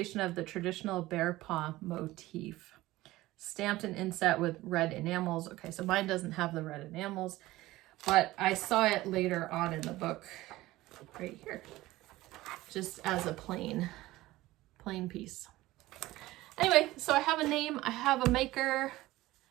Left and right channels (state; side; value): quieter; left; 17.7 dB